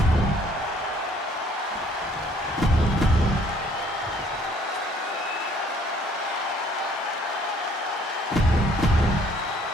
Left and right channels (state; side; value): normal; both; correlation 0.61